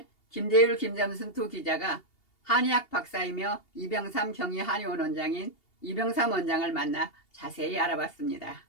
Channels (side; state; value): right; late; 2.8 ms